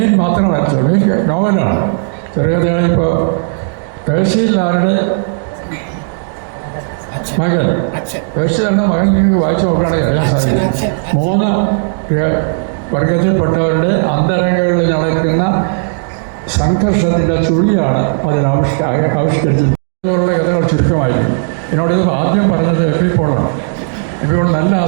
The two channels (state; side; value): silent; left; digital silence